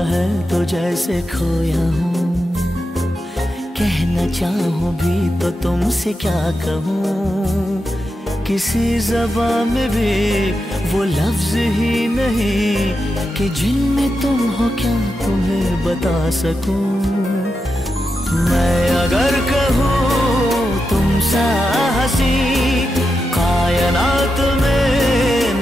है तो जैसे खोया हूँ, कहना चाहूँ भी तो तुमसे क्या कहूँ। किसी ज़बान में भी वो लफ्ज़ ही नहीं कि जिनमें तुम हो क्या तुम्हें बता सकूँ। मैं अगर कहूँ तुम सा हंसी कायनात में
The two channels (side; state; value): both; normal; correlation 0.88